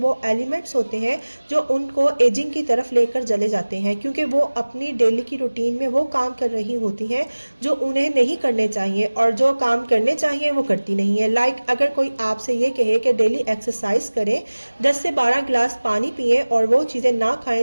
وہ ایلیمنٹس ہوتے ہیں جو ان کو ایجنگ کی طرف لے کر چلے جاتے ہیں، کیونکہ وہ اپنی ڈیلی کی روٹین میں وہ کام کر رہی ہوتی ہیں جو انہیں نہیں کرنے چاہیے، اور جو کام کرنے چاہیے وہ کرتی نہیں ہے۔ لائک اگر کوئی آپ سے یہ کہے کہ ڈیلی ایکسرسائز کریں، 10 سے 12 گلاس پانی پئیں اور وہ چیزیں نہ کھائیں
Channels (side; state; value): both; inverted; correlation -1.00